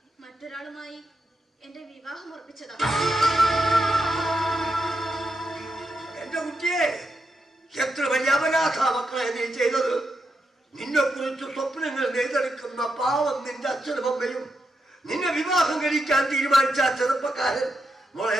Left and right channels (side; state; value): both; normal; correlation 0.85